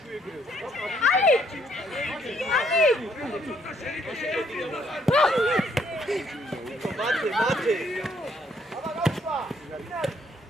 ეგრევე. მათე. აბა გავშვა.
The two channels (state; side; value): normal; both; correlation 0.68